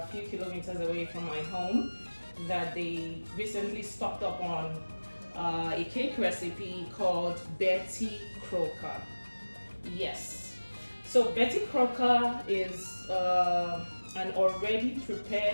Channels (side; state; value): both; inverted; correlation -1.00